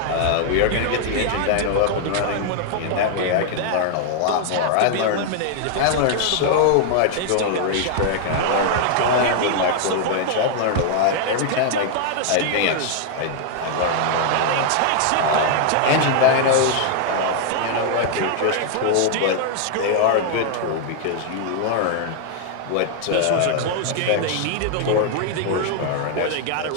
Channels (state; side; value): different; both; correlation 0.00